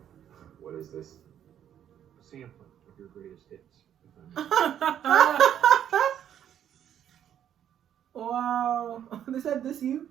What is this? A sampling of your greatest hits. Wow. They said this you?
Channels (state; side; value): quieter; left; 10.0 dB